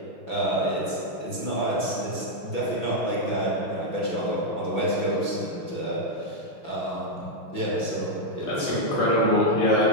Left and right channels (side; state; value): right; late; 6.0 ms